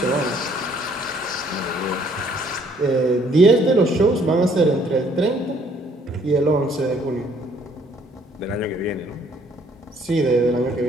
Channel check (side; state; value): both; normal; correlation 0.63